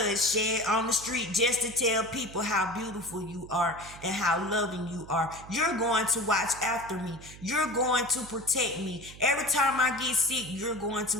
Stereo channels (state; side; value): noise; right; hum, 17 dB below the sound